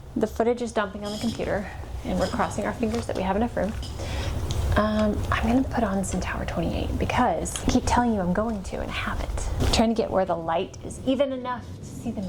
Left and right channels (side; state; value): both; identical; correlation 1.00